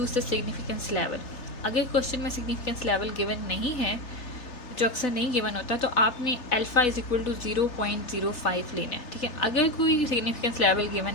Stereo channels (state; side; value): late; right; 3.3 ms